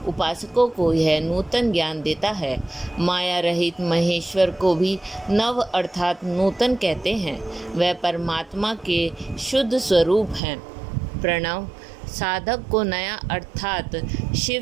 उपासकों को यह नूतन ज्ञान देता है। माया रहित महेश्वर को भी नव अर्थात नूतन कहते हैं। वह परमात्मा के शुद्ध स्वरूप हैं। प्रणव साधक को नया अर्थात शिव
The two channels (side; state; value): left; drops out; at 10.4 s